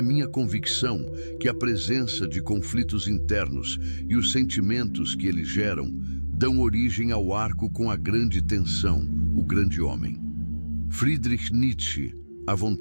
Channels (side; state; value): both; inverted; correlation -1.00